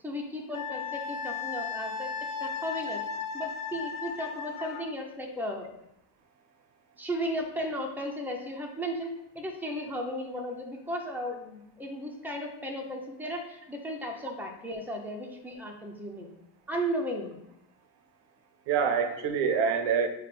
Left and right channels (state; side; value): normal; both; correlation 0.14